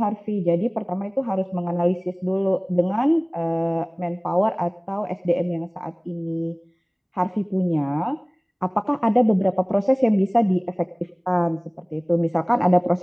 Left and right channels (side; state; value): both; identical; correlation 1.00